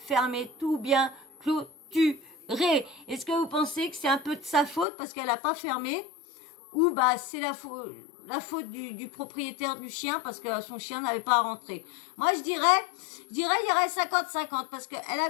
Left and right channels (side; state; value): right; drops out; at 4.9 s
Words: tout bien clôturé? Est-ce que vous pensez que c'est un peu de sa faute parce qu'elle a pas fermé, ou bah c'est la faute du propriétaire du chien parce que son chien n'avait pas à rentrer? Moi je dirais il y aurait 50-50 parce qu'elle